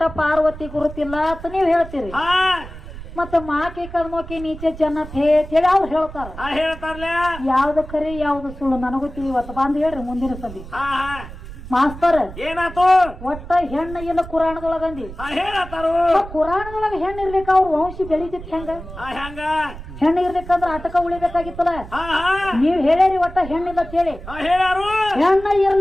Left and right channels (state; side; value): noise; right; rumble, 13 dB below the sound